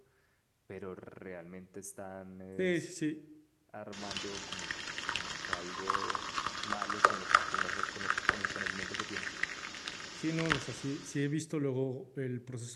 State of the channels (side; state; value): both; identical; correlation 1.00